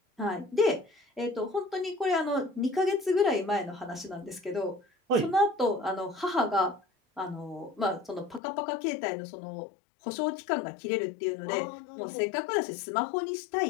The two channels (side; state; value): right; drops out; at 8.4 s